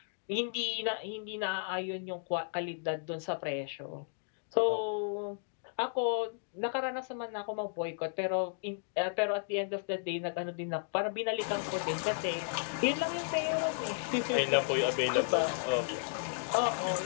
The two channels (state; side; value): silent; right; digital silence